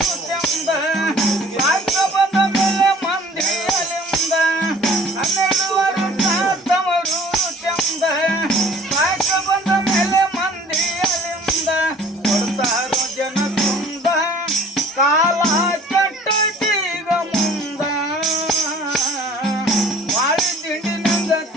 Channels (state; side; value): normal; both; correlation 0.51